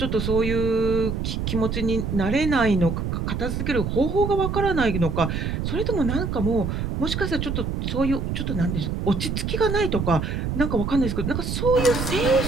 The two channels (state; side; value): noise; right; rumble, 2 dB below the sound